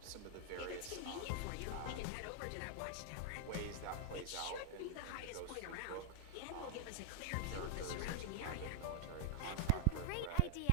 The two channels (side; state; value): both; different; correlation -0.01